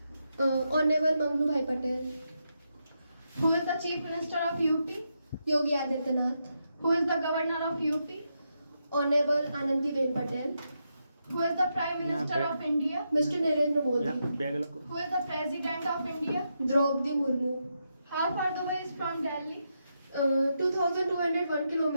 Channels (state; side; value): inverted; both; correlation -0.83